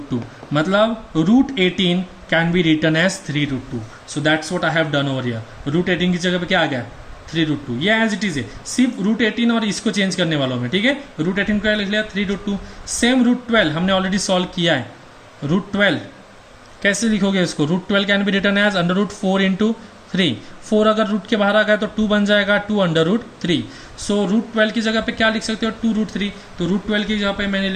2, मतलब root 18 can be written as 3 root 2। So that's what I have done over here. Root 18 की जगह पे क्या आ गया, 3 रूट 2, ये एज इट इज है, सिर्फ रूट 18 और इसको चेंज करने वालों में। ठीक है, रूट 18 को लिख लिया 3 रूट 2। सेम रूट 12 हमने ऑलरेडी सॉल्व किया है, रूट 12 कैसे लिखोगे इसको, root 12 can be written as under root 4 into 3। 4 अगर रूट के बाहर आ गया तो 2 बन जाएगा, 2 अंडर रूट 3। सो रूट 12 की जगह पे क्या लिख सकते हो, 2 रूट 3। तो रूट 12 की जगह पे मैंने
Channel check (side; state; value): both; identical; correlation 1.00